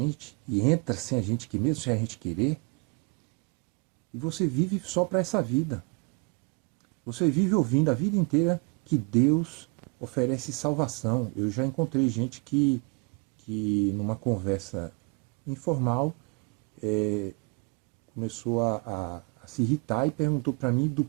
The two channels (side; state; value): left; quieter; 33.7 dB